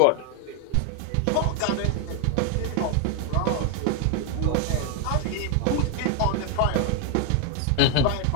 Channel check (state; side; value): different; both; correlation 0.00